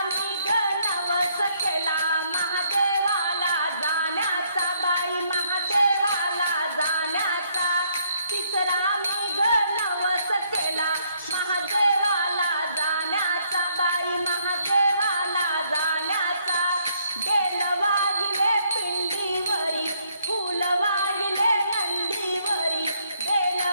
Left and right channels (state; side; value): inverted; both; correlation -0.69